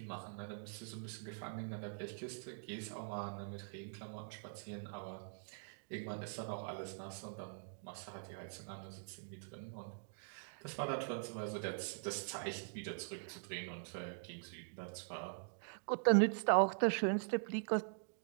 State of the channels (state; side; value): silent; left; digital silence